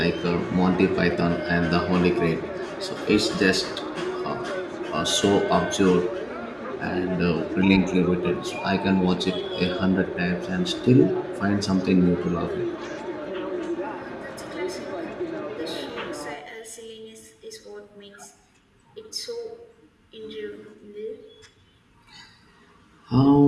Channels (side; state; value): both; identical; correlation 1.00